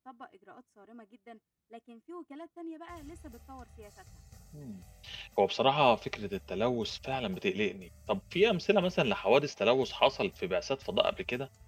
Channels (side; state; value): both; identical; correlation 1.00